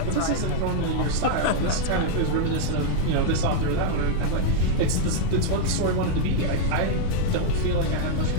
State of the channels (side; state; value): both; different; correlation -0.01